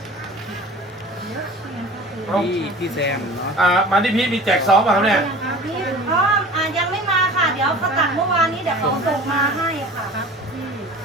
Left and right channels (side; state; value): both; normal; correlation 0.41